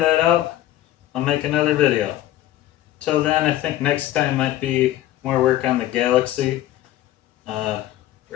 out, I'll make another video. Till then, I think next time might be more work on the Galaxy,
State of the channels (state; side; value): quieter; right; 14.1 dB